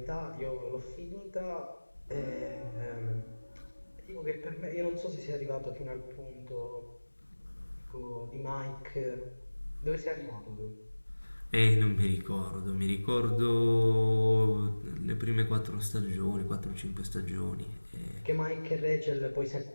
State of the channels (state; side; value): inverted; both; correlation -1.00